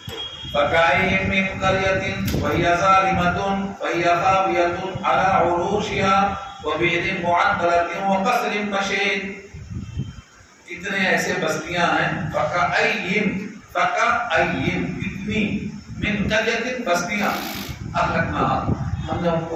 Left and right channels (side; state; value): both; identical; correlation 1.00